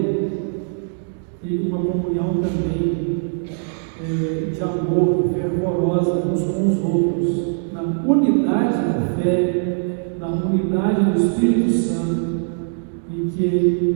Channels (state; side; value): silent; left; digital silence